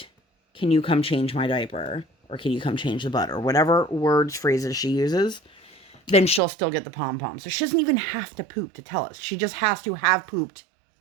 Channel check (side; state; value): left; drops out; at 6.4 s